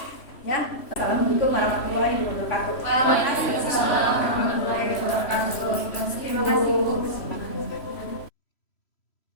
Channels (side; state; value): right; late; 3.0 ms